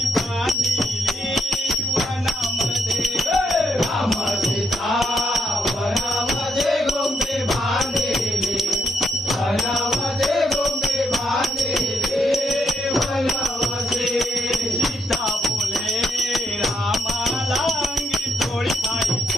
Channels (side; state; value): both; normal; correlation 0.77